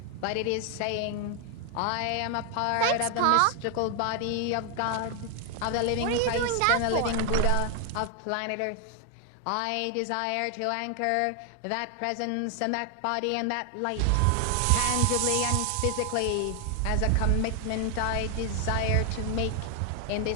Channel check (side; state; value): both; different; correlation 0.00